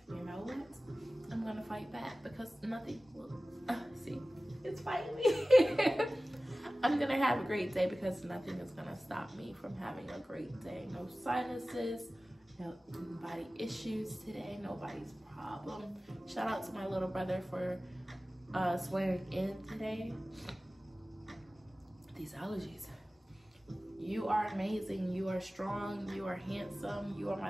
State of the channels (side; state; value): both; normal; correlation 0.97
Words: you know what? I'm gonna fight back because nothing will, see, it's fighting me. I'm gonna have a great day because nothing is gonna stop me from having a great day. No sinuses, no body issues today, nobody's problem. Shout out to my little brother for swearing in today. These allergies. You are amazing, you are strong, you are handsome, you are